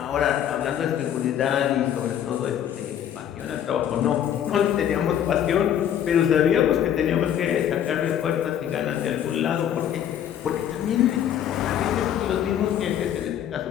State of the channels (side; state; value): right; quieter; 9.9 dB